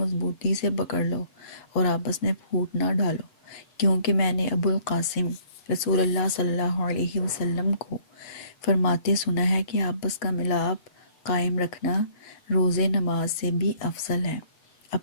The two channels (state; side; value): late; right; 7.7 ms